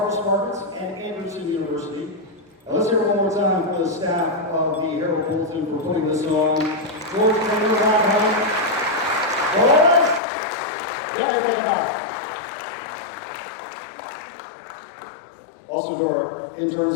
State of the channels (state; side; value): drops out; right; at 10.2 s